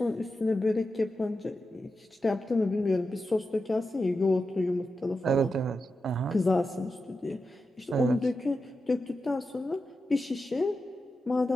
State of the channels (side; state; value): both; normal; correlation 0.90